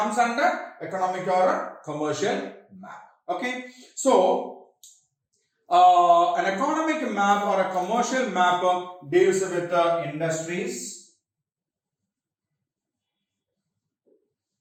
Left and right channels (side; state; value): both; identical; correlation 1.00